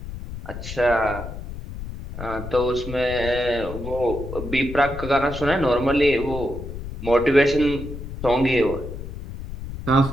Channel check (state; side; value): noise; left; rumble, 9 dB below the sound